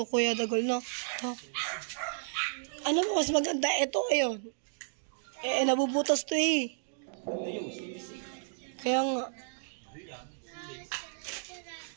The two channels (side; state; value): left; silent; digital silence